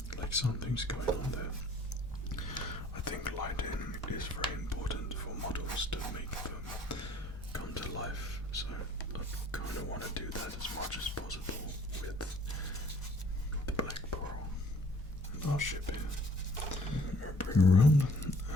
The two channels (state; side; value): normal; both; correlation 0.57